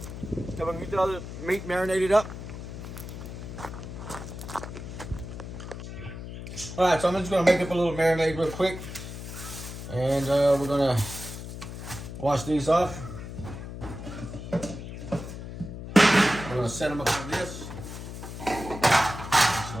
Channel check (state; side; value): noise; left; hum, 9 dB below the sound